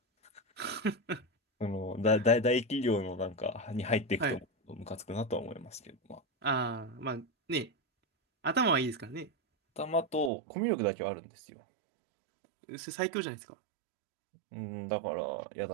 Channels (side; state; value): left; drops out; at 10.3 s